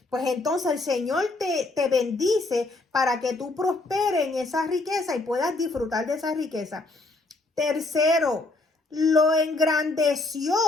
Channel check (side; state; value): right; quieter; 3.1 dB